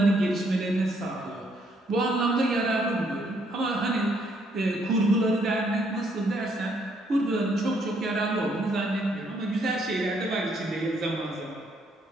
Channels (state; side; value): normal; both; correlation 0.70